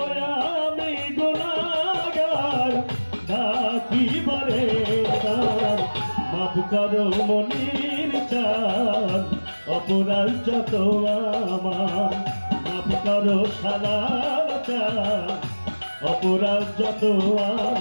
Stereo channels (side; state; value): both; inverted; correlation -1.00